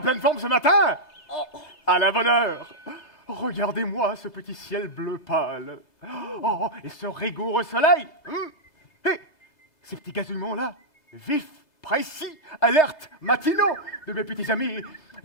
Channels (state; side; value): late; right; 2.0 ms